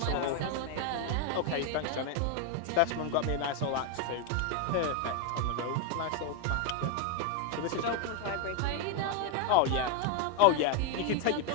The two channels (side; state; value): both; different; correlation 0.01